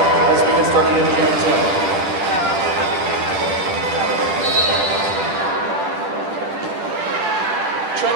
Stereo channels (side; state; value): left; late; 10 ms